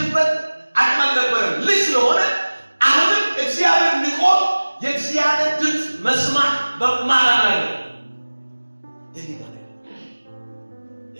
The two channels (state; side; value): inverted; both; correlation -1.00